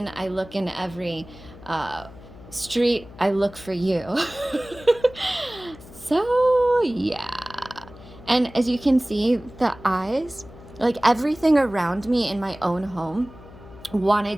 I look in every street, I look for you. So yeah. And as you can see, the eyes, like everything around me in my own home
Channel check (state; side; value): noise; left; hum, 19 dB below the sound